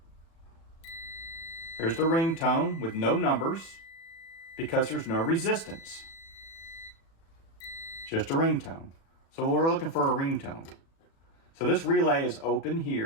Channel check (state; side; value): late; right; 36 ms